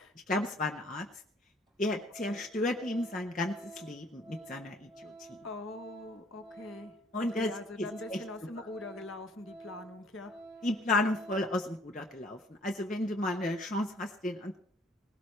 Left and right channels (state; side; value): normal; both; correlation 0.59